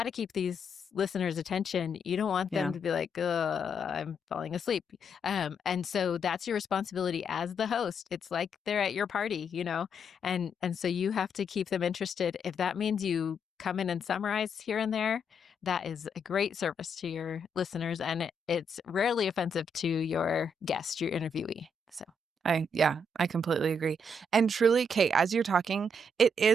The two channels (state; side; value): normal; both; correlation 0.76